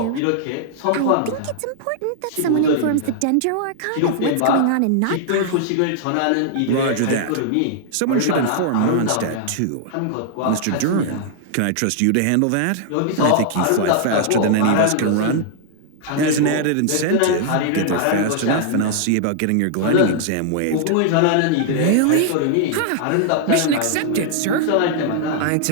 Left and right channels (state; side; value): different; both; correlation -0.01